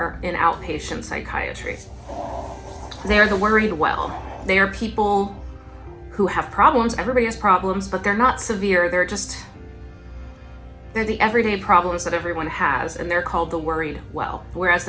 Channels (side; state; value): both; identical; correlation 1.00